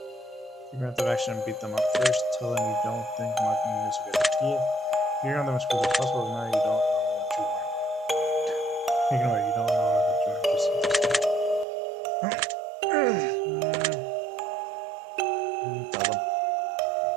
Figure out the action and beat them up first. Tell them you don't think marking is a good idea. Figure on them as quickly as possible. Now you don't know what you want. Ignore it. You don't know what you want. Just tell them.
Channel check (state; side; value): drops out; left; at 11.7 s